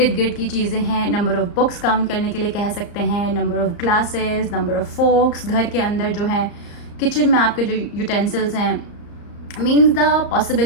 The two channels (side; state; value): right; late; 34 ms